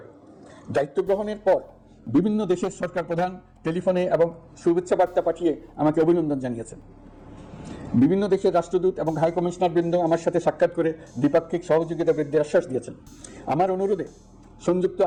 দায়িত্ব গ্রহণের পর বিভিন্ন দেশের সরকার প্রধান টেলিফোনে এবং শুভেচ্ছা বার্তা পাঠিয়ে আমাকে অভিনন্দন জানিয়েছেন। বিভিন্ন দেশের রাষ্ট্রদূত এবং হাই কমিশনার বৃন্দ আমার সাথে সাক্ষাৎ করে দ্বিপাক্ষিক সহযোগিতা বৃদ্ধির আশ্বাস দিয়েছেন। আমার অনুরোধে সংযুক্ত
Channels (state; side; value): identical; both; correlation 1.00